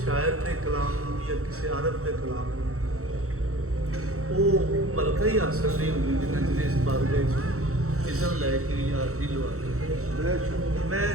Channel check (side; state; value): left; late; 0.64 ms